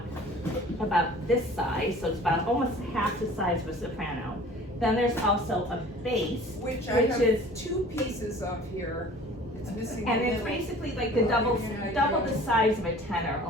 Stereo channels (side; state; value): both; normal; correlation 0.47